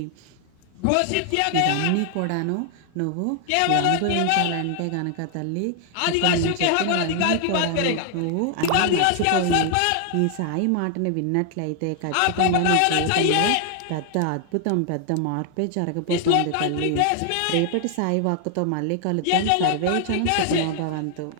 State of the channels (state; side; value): different; both; correlation 0.00